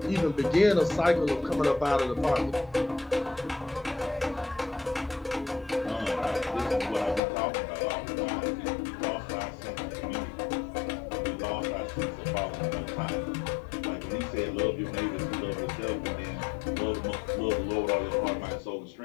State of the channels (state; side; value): drops out; right; at 7.2 s